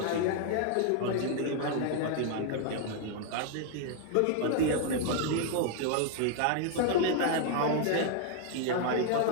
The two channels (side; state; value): both; different; correlation 0.00